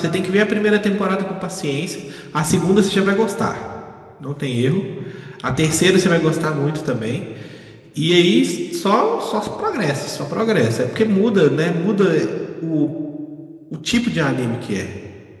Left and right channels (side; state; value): both; identical; correlation 1.00